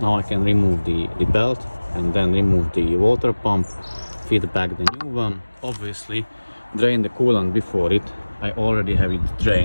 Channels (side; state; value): both; inverted; correlation -1.00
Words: I can remove the belt and then remove the water pump, feed back the new one, obviously drain the coolant before it. I already have it